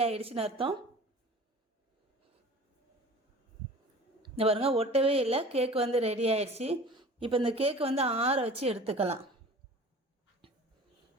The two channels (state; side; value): normal; both; correlation 0.42